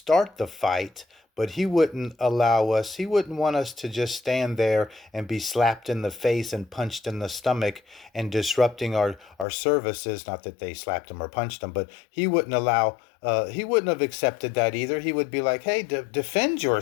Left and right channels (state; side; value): drops out; right; at 9.5 s